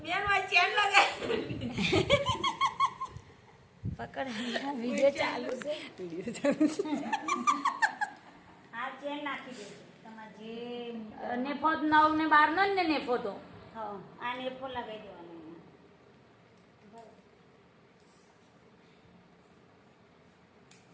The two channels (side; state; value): both; identical; correlation 1.00